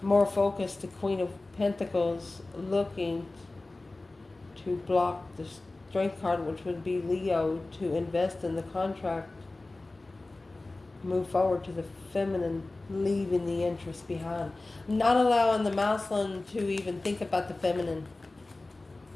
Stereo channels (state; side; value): quieter; right; 3.1 dB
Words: More focused, the Queen of Pentacles looking to block the Strength card, which would be Leo, to invest in the contract. Move forward to the feminine, leaving the interest behind. Not allowing the masculine to even think about the feminine.